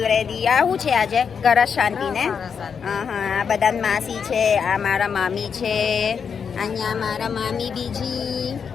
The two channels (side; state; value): right; quieter; 6.6 dB